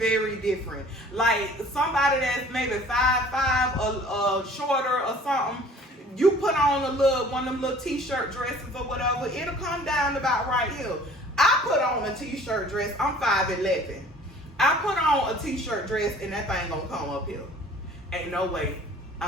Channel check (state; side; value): normal; both; correlation 0.50